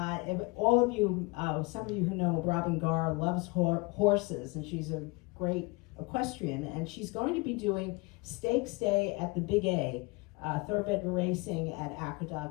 all of you, some of you who know Robin Garr loves horses, and she's a great equestrian, and she's going to be doing Stakes Day at the Big A, thoroughbred racing at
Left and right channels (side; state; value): right; quieter; 26.3 dB